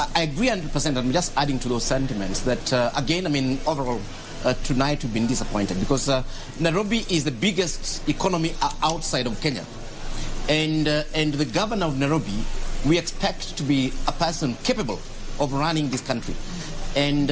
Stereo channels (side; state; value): both; identical; correlation 1.00